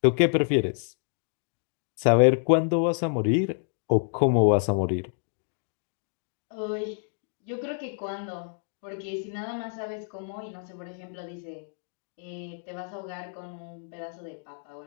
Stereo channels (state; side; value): silent; right; digital silence